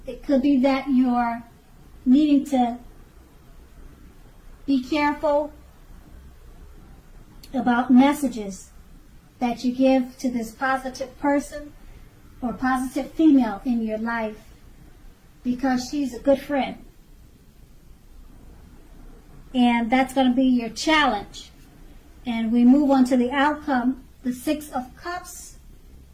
it could be that you're needing to be careful about messages that you give to this positive person or positive female in your life, because she's a good friend. And that's going to be your challenge. And we move on to the outcome, the Six of Cups.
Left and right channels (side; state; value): both; identical; correlation 1.00